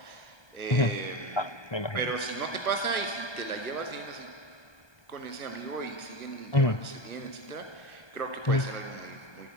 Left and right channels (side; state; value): right; late; 1.2 ms